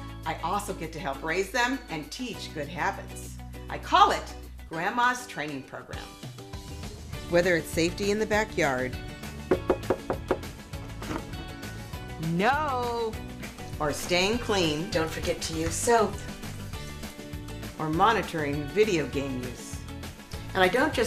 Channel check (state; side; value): identical; both; correlation 1.00